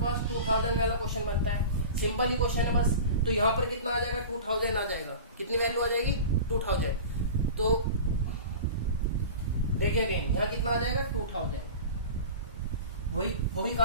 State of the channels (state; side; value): inverted; both; correlation -0.34